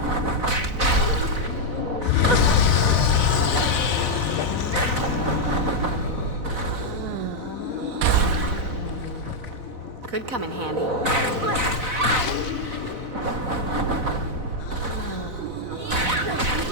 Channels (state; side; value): late; left; 4.0 ms